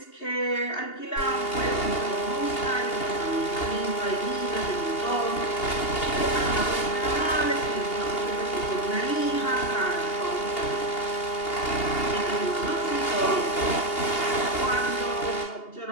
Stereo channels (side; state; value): right; late; 2.8 ms